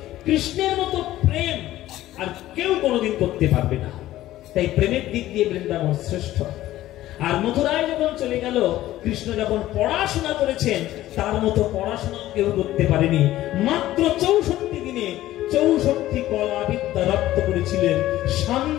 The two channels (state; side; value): quieter; right; 14.8 dB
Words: কৃষ্ণের মতো প্রেম আর কেউ কোনোদিন করতে পারবে না। তাই প্রেমের দিক দিয়ে বৃন্দাবন শ্রেষ্ঠ। আর মথুরায় যখন চলে গেল, কৃষ্ণ যখন পড়াশোনা করেছেন, তার মতো পড়াশোনা কেউ করতে পারেনি। মাত্র 64 দিনে 64টি কলা বিদ্যা রপ্ত করেছিলেন